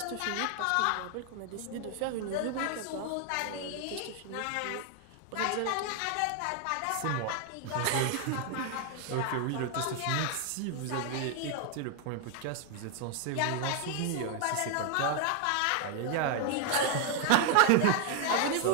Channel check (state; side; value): different; both; correlation 0.00